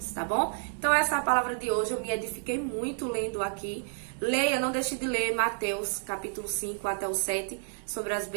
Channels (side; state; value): left; silent; 58 dB below the other